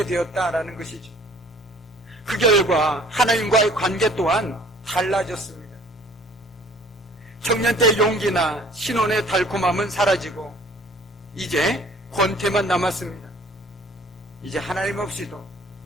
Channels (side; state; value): both; normal; correlation 0.53